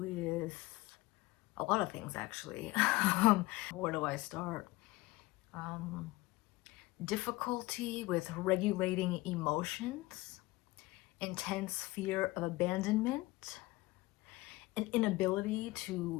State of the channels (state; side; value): quieter; right; 20.3 dB